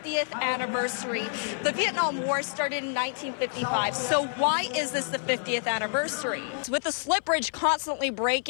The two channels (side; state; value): right; silent; 55 dB below the other